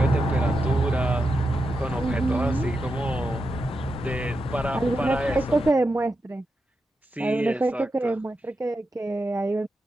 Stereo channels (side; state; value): both; normal; correlation 0.87